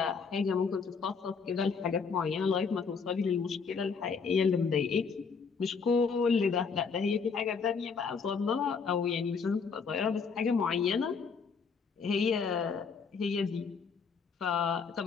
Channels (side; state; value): right; quieter; 5.5 dB